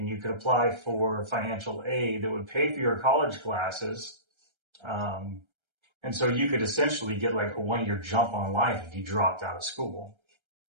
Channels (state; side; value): late; left; 1.3 ms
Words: you could apply for financial aid that would pay for your college classes. And so you could essentially get like a 1-year jump on life if you dropped out of school.